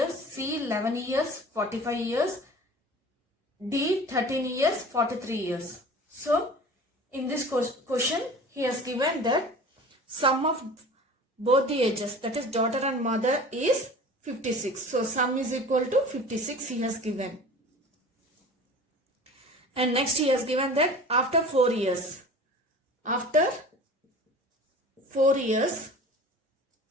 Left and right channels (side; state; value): both; normal; correlation 0.40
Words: C, 11 years, 45 years, D, 13 years, 43 years. So, in this question, he has given that sum of both the ages, that is daughter and mother, is 56. So, sum is equal to 56 he has given. And next he has given that after 4 years,